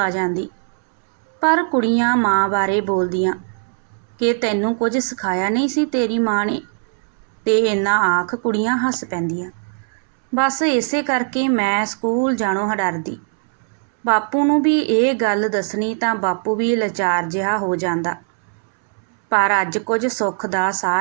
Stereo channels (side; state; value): left; silent; 66 dB below the other